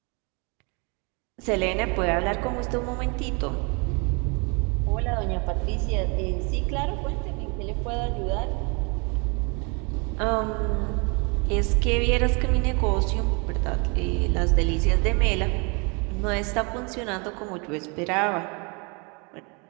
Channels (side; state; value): left; quieter; 31.9 dB